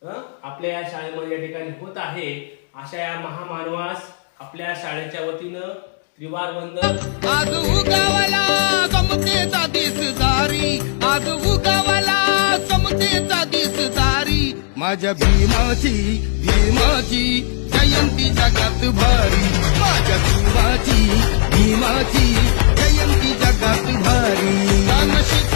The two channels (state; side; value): silent; right; digital silence